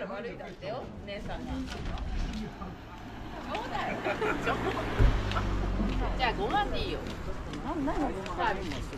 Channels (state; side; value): identical; both; correlation 1.00